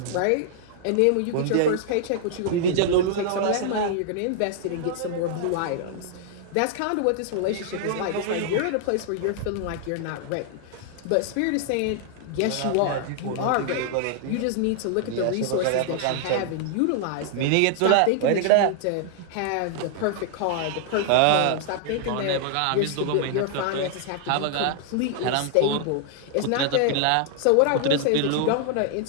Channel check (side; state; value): both; different; correlation 0.00